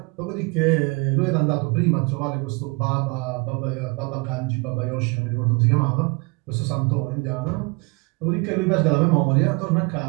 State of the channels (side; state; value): left; quieter; 30.4 dB